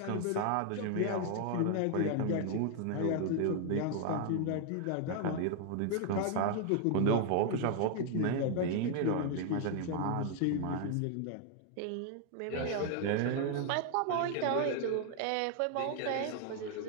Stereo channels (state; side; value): different; both; correlation 0.00